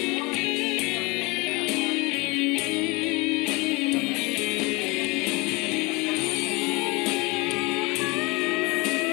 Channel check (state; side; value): quieter; right; 25.6 dB